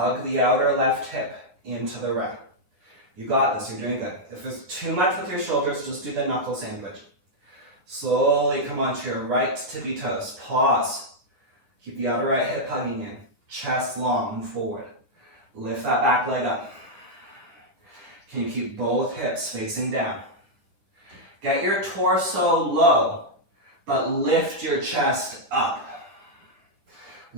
the outer left hip into the right. You got this. You're doing good. If there's too much with your shoulders, just do the knuckle sandwich. Slowly come onto your right tippy toes. Pause. Keep the outer right hip hugging in. Chest long, move forward. Lift that back leg up. Can you keep both hips facing down? Get your torso low, but lift your chest up.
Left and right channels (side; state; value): left; late; 10 ms